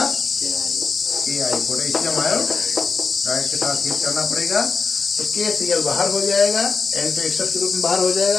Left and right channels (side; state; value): right; quieter; 4.9 dB